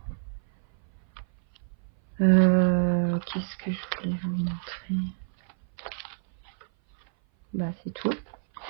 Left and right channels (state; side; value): silent; left; 57 dB below the other